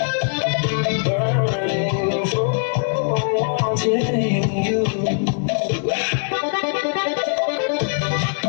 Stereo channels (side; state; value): right; silent; digital silence